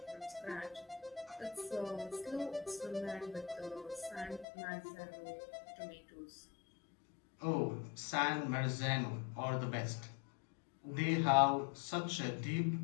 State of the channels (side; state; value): right; drops out; at 4.5 s